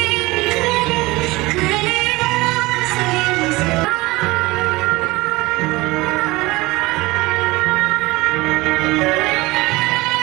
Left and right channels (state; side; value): quieter; left; 21.3 dB